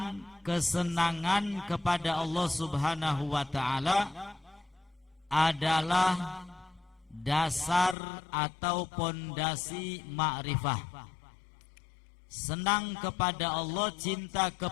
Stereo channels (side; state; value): right; drops out; at 8.0 s